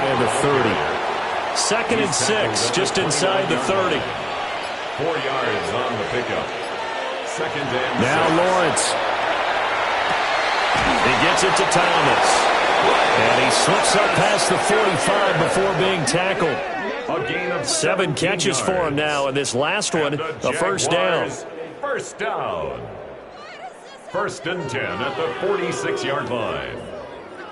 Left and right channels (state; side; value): identical; both; correlation 1.00